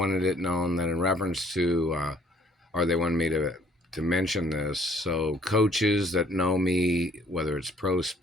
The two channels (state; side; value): normal; both; correlation 0.60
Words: it known that in reference to, or they wanted me to mention this. So coaches that know me, whether it's pro